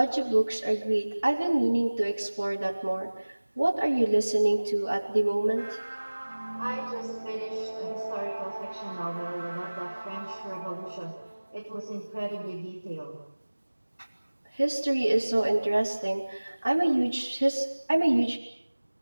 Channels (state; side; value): inverted; both; correlation -1.00